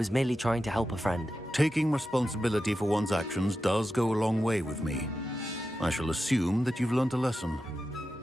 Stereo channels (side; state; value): both; normal; correlation 0.91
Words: merely trying to help a friend. Taking responsibility for one's actions does go a long way with me. I shall assume that you've learnt a lesson.